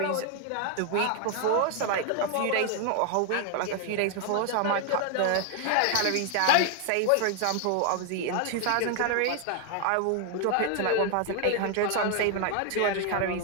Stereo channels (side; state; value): both; different; correlation 0.00